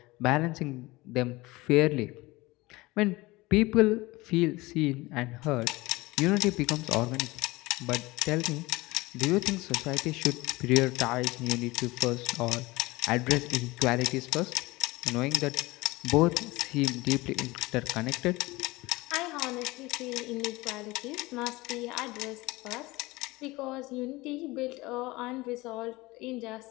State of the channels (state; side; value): quieter; right; 21.3 dB